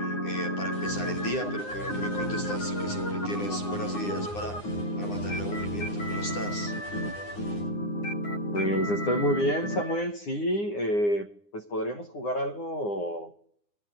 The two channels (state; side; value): late; right; 9.8 ms